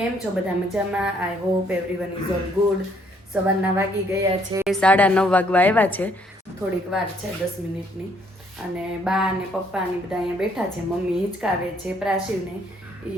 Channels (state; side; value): normal; both; correlation 0.66